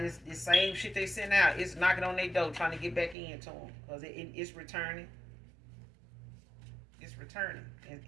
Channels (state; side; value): drops out; left; at 3.2 s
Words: same shit they sent out, it's knocking on their door trying to get back into them, because it's returning. It's returning,